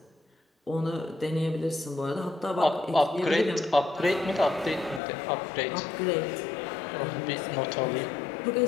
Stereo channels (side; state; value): right; drops out; at 5.0 s